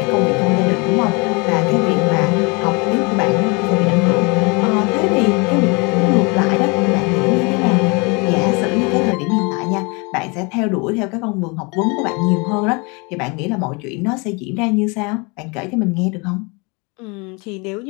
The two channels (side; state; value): right; quieter; 29.6 dB